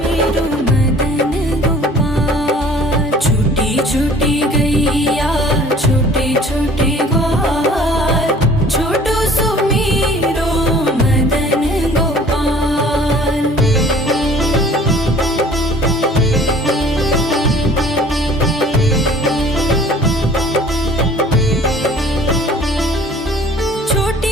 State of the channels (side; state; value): both; normal; correlation 0.51